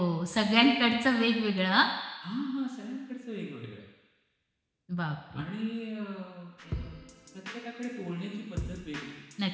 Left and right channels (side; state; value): both; identical; correlation 1.00